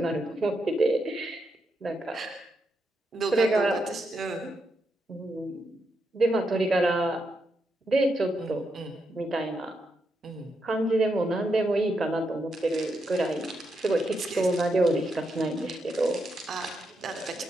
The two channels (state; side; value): normal; both; correlation 0.83